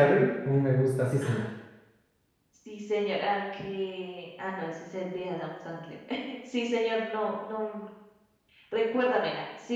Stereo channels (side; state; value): both; identical; correlation 1.00